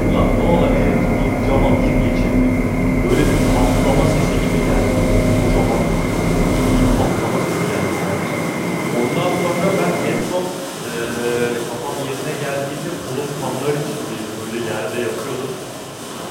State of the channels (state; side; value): identical; both; correlation 1.00